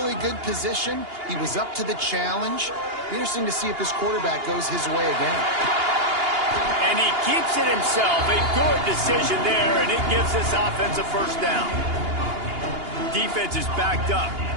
good position. He was up to the challenge. Interesting to see if this quarterback goes his way again. And he keeps it himself. A good decision there, and it gives this offense a 1st down. Defense is backed up.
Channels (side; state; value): left; late; 2.8 ms